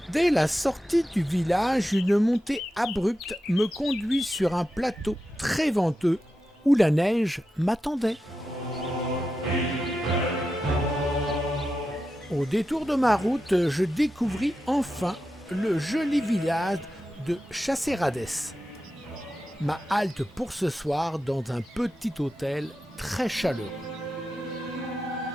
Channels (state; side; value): normal; both; correlation 0.90